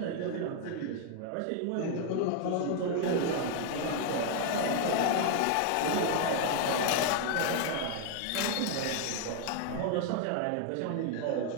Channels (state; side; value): different; both; correlation 0.00